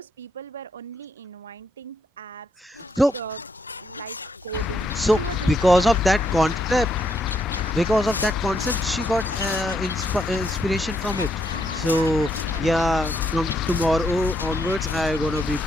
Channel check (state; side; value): normal; both; correlation 0.76